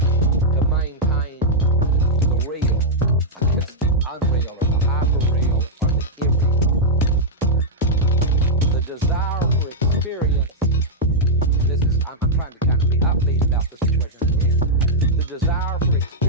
to maintain the real against the unreal, or the hyper-real, or the irreal. The desire for experience, and this is, I'm trying to kind of be upbeat about the situation I'm in. The desire for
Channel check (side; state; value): both; normal; correlation -0.07